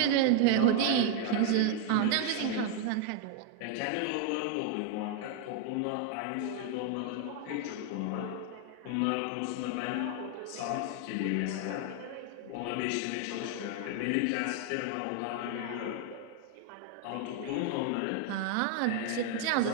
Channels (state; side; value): different; both; correlation 0.00